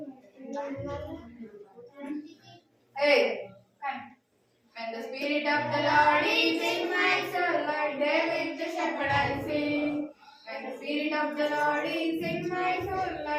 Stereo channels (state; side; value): identical; both; correlation 1.00